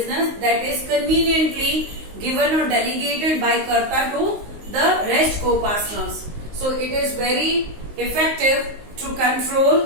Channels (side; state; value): left; late; 19 ms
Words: that is conveniently given or delegated by Karta to the rest co-partners. So it is very effective to